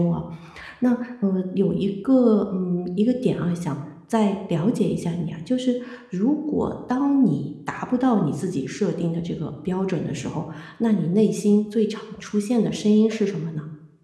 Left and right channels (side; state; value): both; identical; correlation 1.00